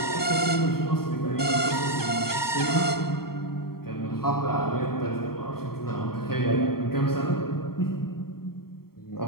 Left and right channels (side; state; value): right; late; 0.94 ms